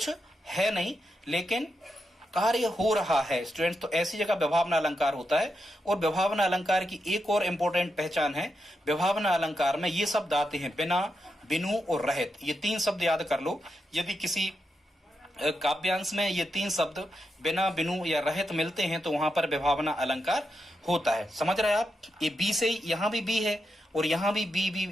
है नहीं लेकिन कार्य हो रहा है स्टूडेंट्स, तो ऐसी जगह विभावना अलंकार होता है। और विभावना अलंकार की एक और इंपॉर्टेंट पहचान है, विभावना अलंकार में ये शब्द आते हैं बिना, बिनु और रहित। ये 3 शब्द याद कर लो, यदि किसी काव्यांश में ये 3 शब्द बिना, बिनु या रहित मिलते हैं तो वहां पर विभावना अलंकार होता है। समझ रहे हैं आप, ये बी से यहाँ भी बी है और यहाँ भी बी,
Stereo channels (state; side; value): normal; both; correlation 0.85